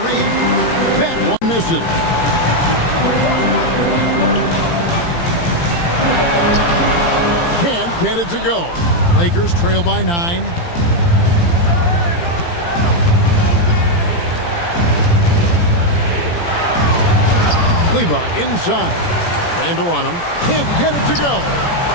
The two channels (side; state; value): right; late; 17 ms